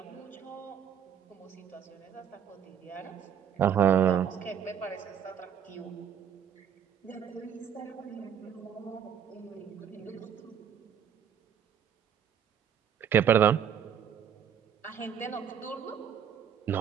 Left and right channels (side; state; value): left; quieter; 8.5 dB